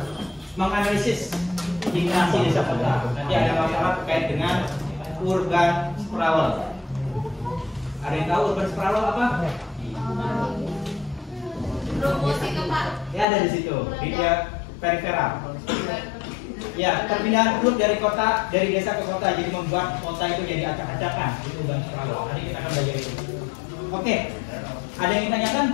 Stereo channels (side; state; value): right; drops out; at 13.2 s